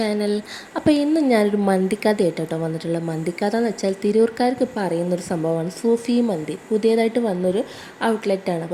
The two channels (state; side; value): identical; both; correlation 1.00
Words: അപ്പോൾ ഇന്ന് ഞാനൊരു മന്തിക്കഥ കേട്ടോ വന്നിട്ടുള്ളത്. മന്തിക്കഥ എന്ന് വെച്ചാൽ തിരൂർക്കാർക്ക് പറയുന്നൊരു സംഭവമാണ് സൂഫി മന്തി. പുതിയതായിട്ട് വന്നൊരു ഔട്ട്ലെറ്റാണ്.